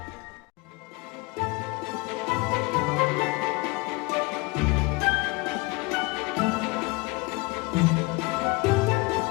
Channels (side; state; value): right; quieter; 25.4 dB